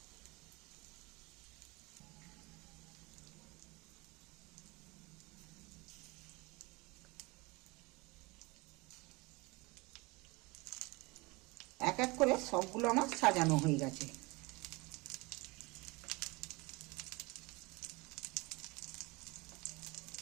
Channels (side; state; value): left; quieter; 24.9 dB